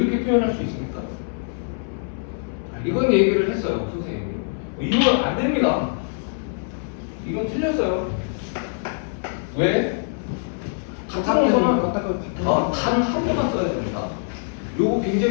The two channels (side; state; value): right; silent; 61 dB below the other